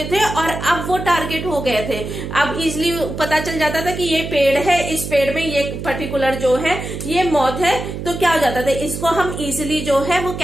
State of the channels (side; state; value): right; noise; hum, 7 dB below the sound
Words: थे और अब वो टारगेट हो गए थे। अब इजीली पता चल जाता था कि ये पेड़ है, इस पेड़ में ये पर्टिकुलर जो है ये मॉथ है, तो क्या हो जाता था, इसको हम इजीली जो है वो